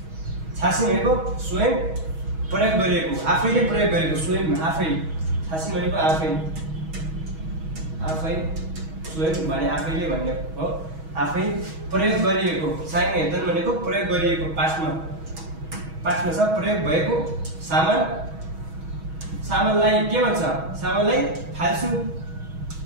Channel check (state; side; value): late; left; 6.3 ms